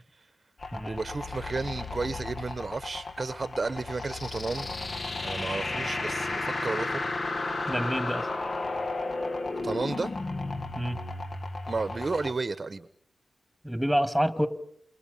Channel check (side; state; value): both; normal; correlation 0.94